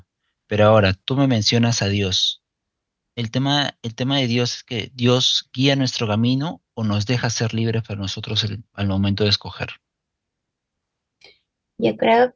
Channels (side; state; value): both; identical; correlation 1.00